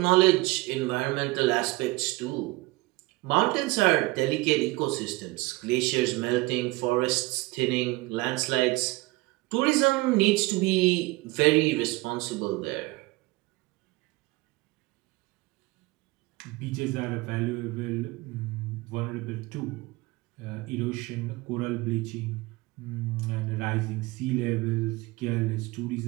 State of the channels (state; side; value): quieter; left; 22.1 dB